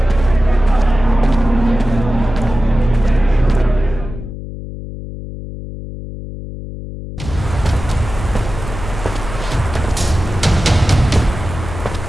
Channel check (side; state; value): left; noise; hum, 10 dB below the sound